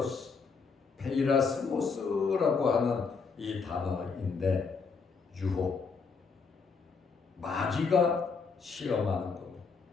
페이라스모스라고 하는 이 단어인데 유혹, 마귀가 시험하는 겁니다.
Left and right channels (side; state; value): right; quieter; 5.1 dB